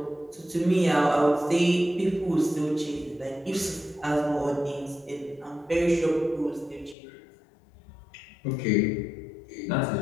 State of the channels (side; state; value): right; drops out; at 7.0 s